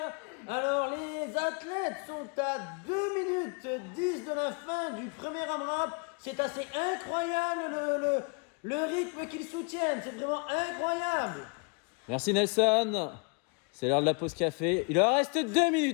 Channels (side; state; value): right; quieter; 35.2 dB